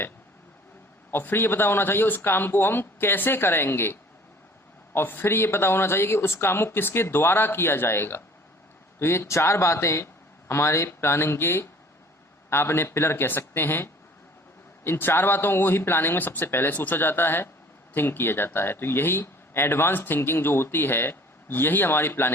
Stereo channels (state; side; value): normal; both; correlation 0.50